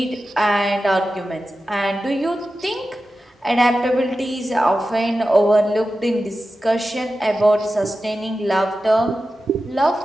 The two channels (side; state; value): both; normal; correlation 0.93